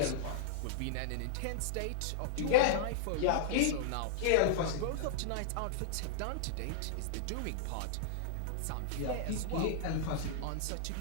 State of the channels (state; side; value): different; both; correlation -0.01